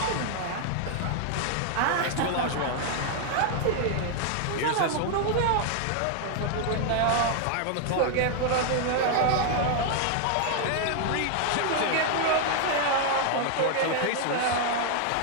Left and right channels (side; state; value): both; different; correlation 0.00